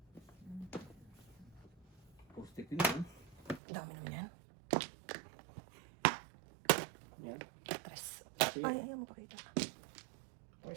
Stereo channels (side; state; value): left; drops out; at 3.6 s